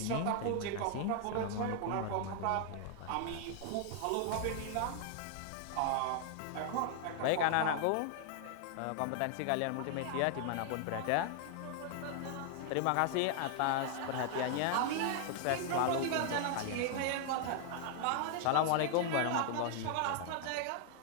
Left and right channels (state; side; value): different; both; correlation 0.00